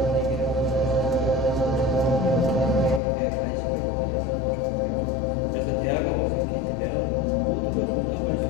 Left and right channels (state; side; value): drops out; right; at 3.0 s